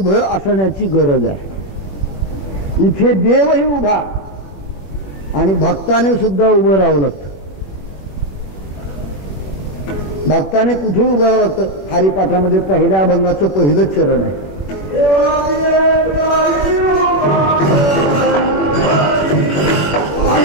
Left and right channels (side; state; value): right; late; 21 ms